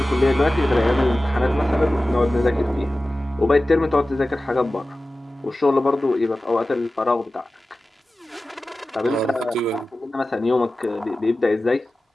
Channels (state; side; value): normal; both; correlation 0.95